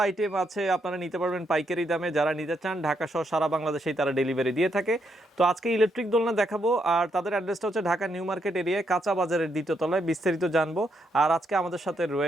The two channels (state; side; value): normal; both; correlation 0.78